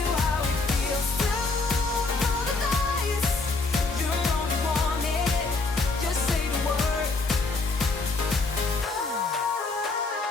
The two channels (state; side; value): quieter; right; 3.7 dB